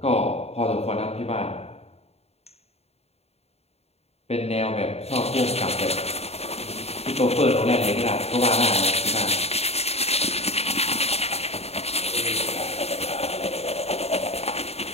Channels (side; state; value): right; late; 0.30 ms